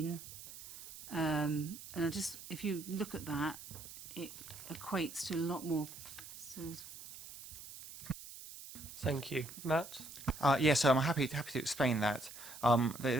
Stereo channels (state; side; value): noise; right; hiss, 14 dB below the sound